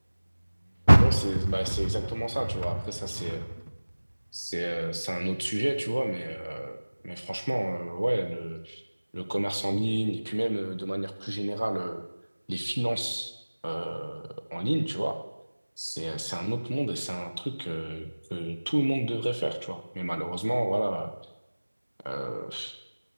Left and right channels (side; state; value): both; inverted; correlation -1.00